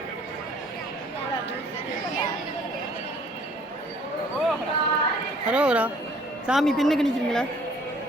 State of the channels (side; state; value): both; normal; correlation 0.57